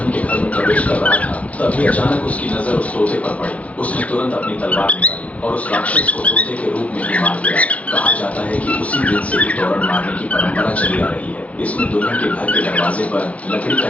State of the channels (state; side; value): late; right; 0.067 ms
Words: के घर में प्रवेश कर रहा था तभी अचानक उसकी नजर उस तोते पर पड़ी। उसने तुरंत अपनी तलवार निकाली और उस राक्षस को तोते के रूप में ही मार दिया। कहा जाता है कि उसी दिन से ही तोरण मारने की परंपरा चली आ रही है। इसमें दुल्हन के घर के दरवाजे पर लकड़ी का